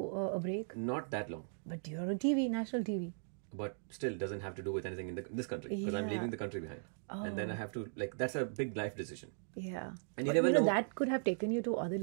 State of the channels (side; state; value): left; silent; digital silence